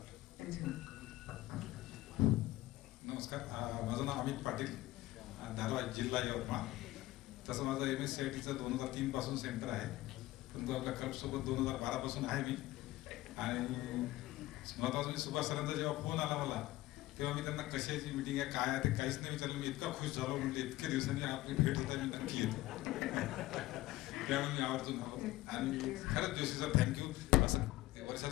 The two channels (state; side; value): quieter; right; 17.4 dB